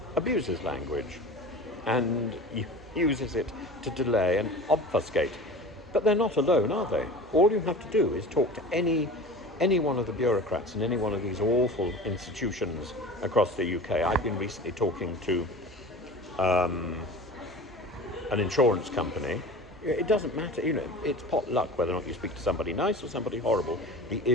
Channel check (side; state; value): both; normal; correlation 0.36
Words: abuses language and uses it to delay and obfuscate. But they're not alone, are they? All you have to do is talk to any one of the bureaucrats in any one of these awful institutions across the UK. I've been recently talking to an insurance company. It doesn't matter, it's pot luck whether or not you speak to somebody nice or somebody horrible. The